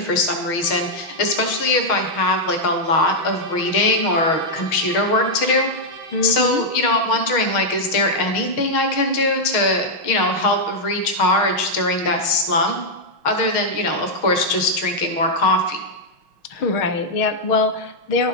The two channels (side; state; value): right; late; 6.4 ms